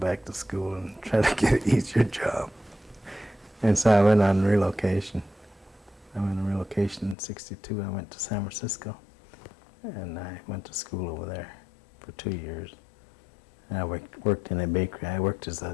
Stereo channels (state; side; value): drops out; right; at 7.2 s